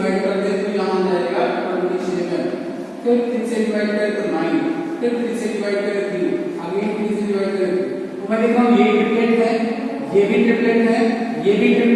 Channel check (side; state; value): both; identical; correlation 1.00